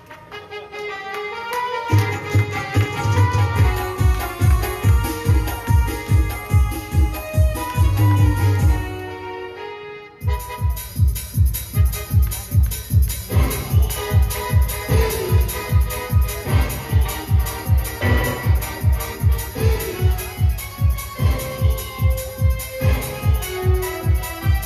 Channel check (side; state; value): both; identical; correlation 1.00